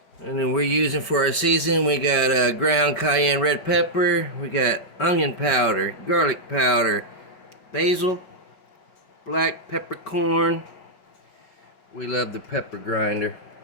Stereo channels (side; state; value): right; late; 5.2 ms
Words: And then we're using for our season, we got ground cayenne red pepper, we got onion powder, garlic powder, basil, black peppercorn. We love the pepper grinder.